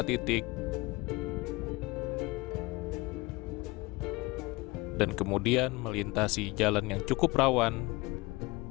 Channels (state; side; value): quieter; right; 22.9 dB